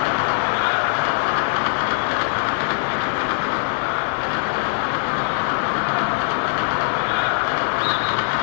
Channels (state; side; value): silent; right; digital silence